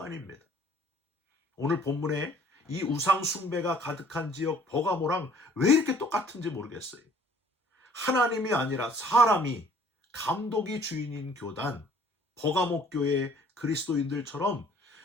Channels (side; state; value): both; normal; correlation 0.56